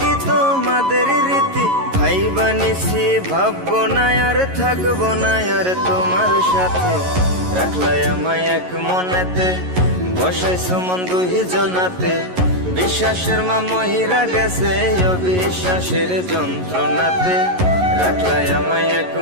তোমাদের রীতি। ভাই বানিছি ভাববো না আর থাকবো না আর তোমার সাথে। রাখলাই আমায় এক মনেতে, বসাইছো মন দুই জনাতে। বিশ্বাসের মা মহিরা গেছে অবিশ্বাসের যন্ত্রণাতে। রাখলাই আমায় এক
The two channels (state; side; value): late; left; 11 ms